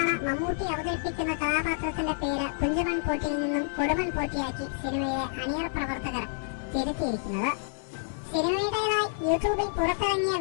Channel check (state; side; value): silent; right; digital silence